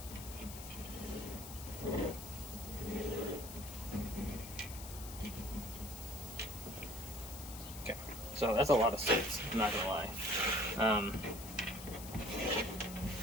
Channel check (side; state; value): left; noise; hiss, 12 dB below the sound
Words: Okay, so that's a lot of seeds, I'm not gonna lie.